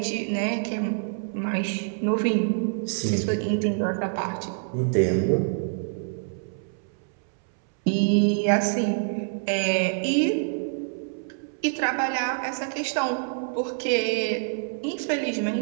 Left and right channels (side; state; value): left; silent; 61 dB below the other